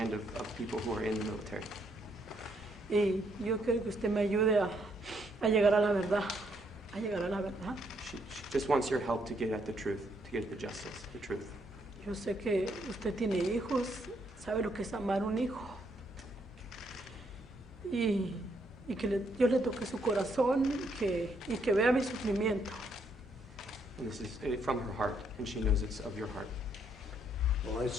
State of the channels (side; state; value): both; normal; correlation 0.73